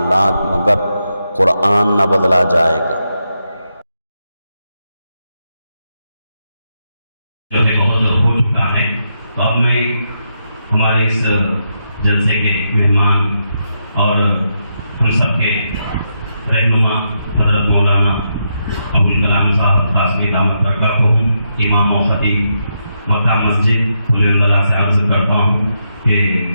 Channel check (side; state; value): both; inverted; correlation -0.82